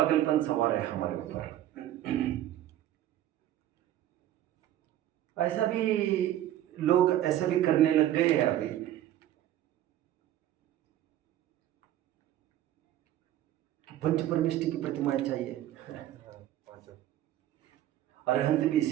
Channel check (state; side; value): quieter; left; 12.7 dB